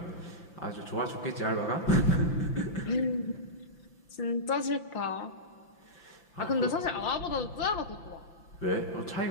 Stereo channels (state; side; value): late; right; 5.8 ms